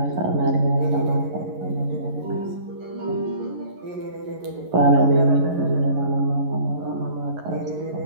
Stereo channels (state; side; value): late; left; 11 ms